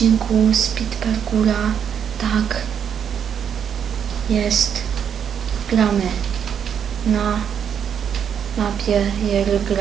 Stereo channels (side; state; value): left; quieter; 8.1 dB